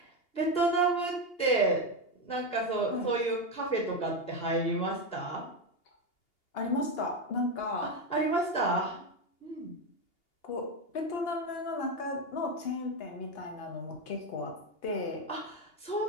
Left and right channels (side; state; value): right; late; 2.8 ms